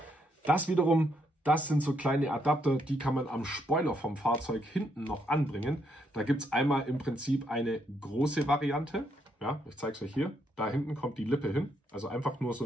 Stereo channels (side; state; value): both; normal; correlation 0.75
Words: das wiederum, das sind so kleine Adapter, die kann man am Spoiler vom Fahrzeug hinten noch anbringen. Da gibt es einmal im Prinzip eine große Variante. Ja, ich zeige es euch hier. Da hinten kommt die Lippe hin. Also einfach nur so